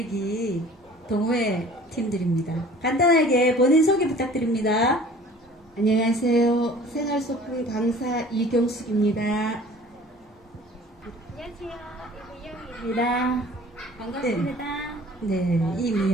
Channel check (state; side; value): normal; both; correlation 0.48